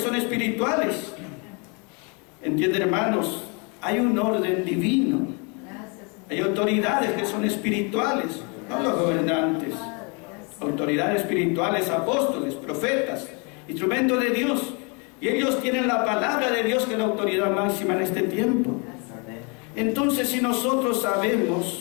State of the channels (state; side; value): quieter; right; 33.1 dB